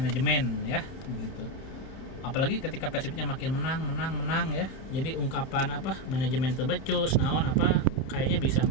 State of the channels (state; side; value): late; right; 31 ms